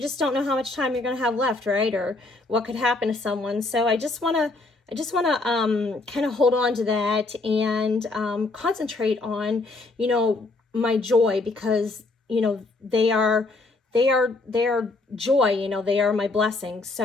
just don't know how much time you're going to have left, right? Or what could happen to someone. So I just want to kind of hold on to that and concentrate on, my joy, because, they are joy, they are my blessings.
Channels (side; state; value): right; quieter; 3.3 dB